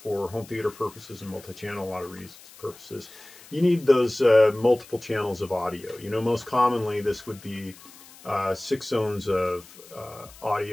home theater purposes and multi-channel, a lot of reasons purposes, you need those multiple channels of audio. Most commonly this would be 6 zones of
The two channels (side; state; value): left; noise; hiss, 21 dB below the sound